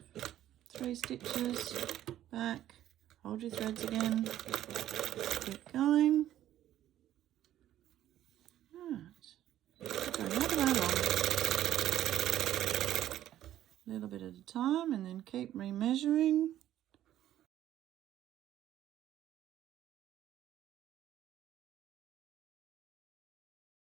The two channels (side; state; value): left; quieter; 12.5 dB